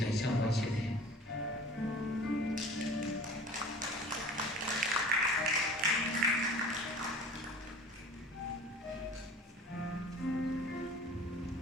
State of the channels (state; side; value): normal; both; correlation 0.43